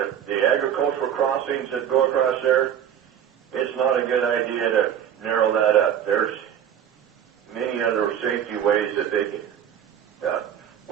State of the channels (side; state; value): left; quieter; 9.4 dB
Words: the agricultural crossings that go across there, it's not a good idea to narrow that up. There's many other safety ways that they can,